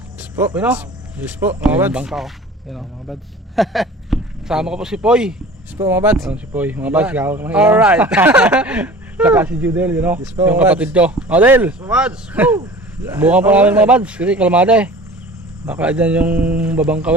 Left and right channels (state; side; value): normal; both; correlation 0.42